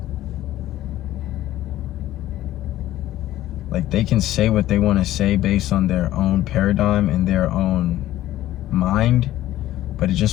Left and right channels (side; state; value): right; quieter; 14.3 dB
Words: like, they can say what they want to say based on their own paradigm and their own mind, but it